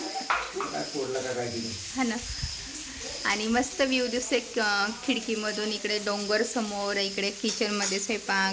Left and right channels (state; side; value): identical; both; correlation 1.00